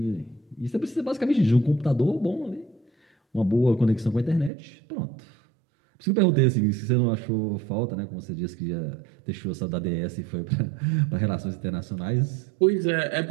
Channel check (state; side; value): drops out; left; at 4.5 s